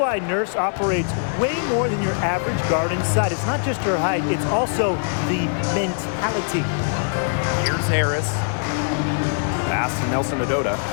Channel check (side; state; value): right; silent; 64 dB below the other